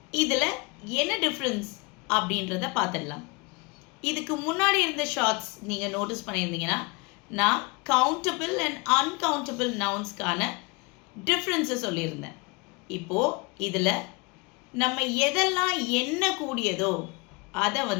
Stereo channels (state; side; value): quieter; right; 27.6 dB